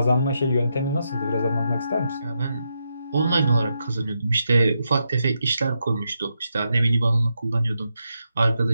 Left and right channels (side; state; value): both; inverted; correlation -0.83